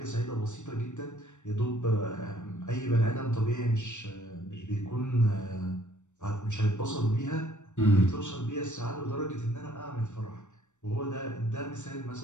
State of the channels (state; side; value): late; right; 0.84 ms